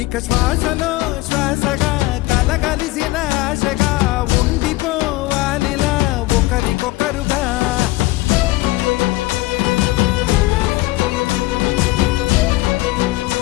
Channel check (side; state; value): right; quieter; 19.4 dB